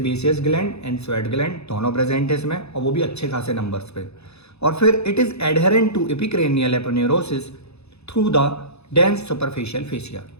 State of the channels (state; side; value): late; right; 0.79 ms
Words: gland and sweat gland दोनों प्रेजेंट है इसमें, और वो भी अच्छे खासे नंबर्स पे। और फिर it is adherent to epicranial aponeurosis through the dense superficial fascia.